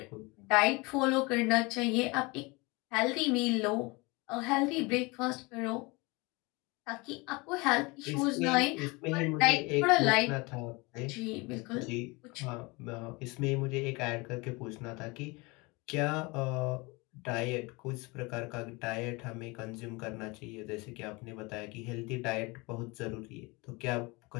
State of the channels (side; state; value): right; quieter; 25.9 dB